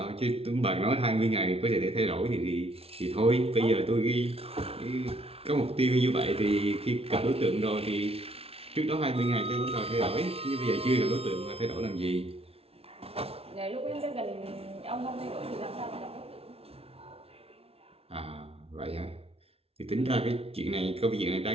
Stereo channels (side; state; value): left; late; 0.29 ms